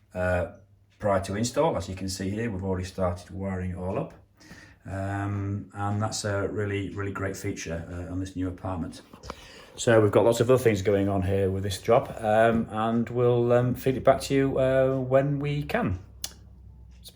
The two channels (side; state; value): both; identical; correlation 1.00